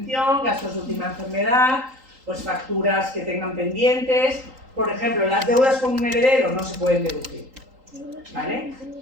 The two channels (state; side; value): late; left; 3.8 ms